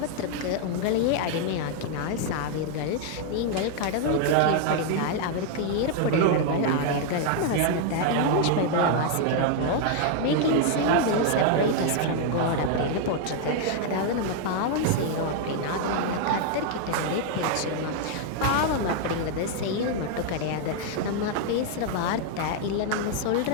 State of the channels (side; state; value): both; different; correlation 0.00